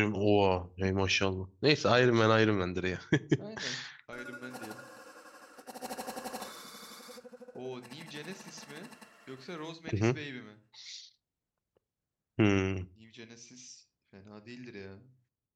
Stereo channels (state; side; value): identical; both; correlation 1.00